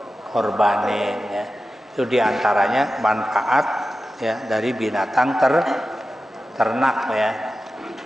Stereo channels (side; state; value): both; normal; correlation 0.93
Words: ya. Itu diantaranya manfaat, ya, dari binatang ternak, ya.